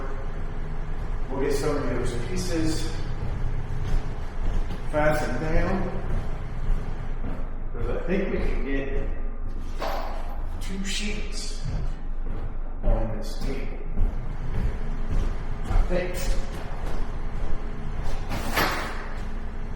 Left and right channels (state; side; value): identical; both; correlation 1.00